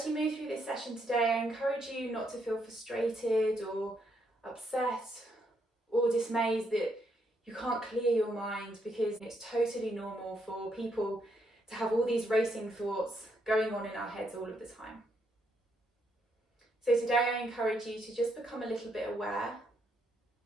you move through this session today, I encourage you not to feel frustrated or upset or dismayed that you can't clear your mind, because it's totally normal for people to have all these racing thoughts going on in our heads all of the time. So today I encourage you to just become a little bit aware,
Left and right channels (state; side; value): normal; both; correlation 0.76